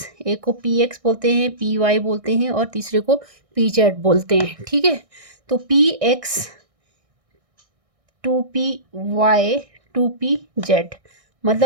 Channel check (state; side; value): late; left; 1.6 ms